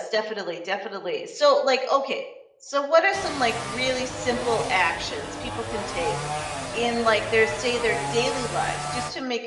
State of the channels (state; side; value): identical; both; correlation 1.00